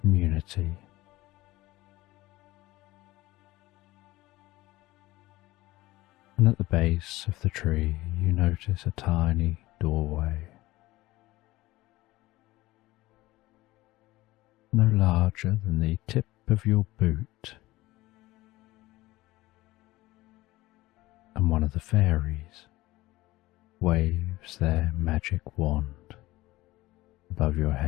And at the base of the tree you notice a tiny doorway, no larger than the tip of your boot, and one of the fairies waves their magic wand above your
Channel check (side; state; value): right; quieter; 18.4 dB